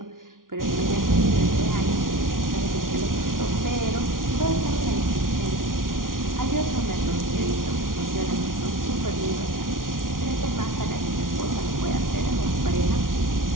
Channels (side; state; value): left; late; 0.90 ms